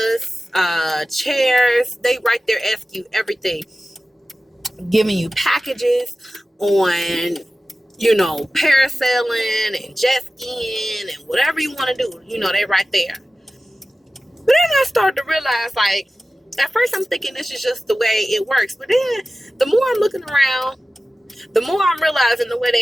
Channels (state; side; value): normal; both; correlation 0.95